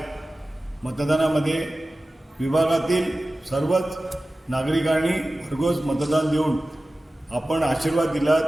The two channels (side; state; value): both; normal; correlation 0.96